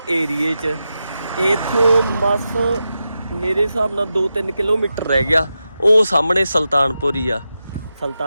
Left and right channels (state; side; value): inverted; both; correlation -0.90